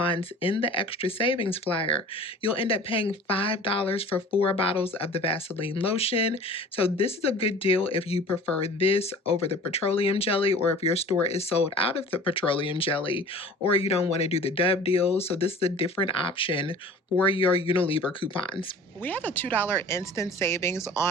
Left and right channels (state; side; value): normal; both; correlation 0.43